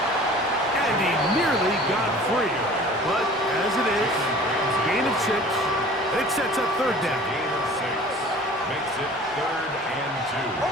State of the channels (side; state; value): both; normal; correlation 0.45